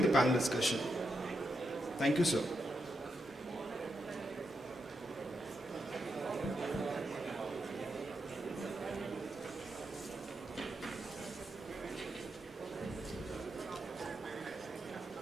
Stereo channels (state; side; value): normal; both; correlation 0.84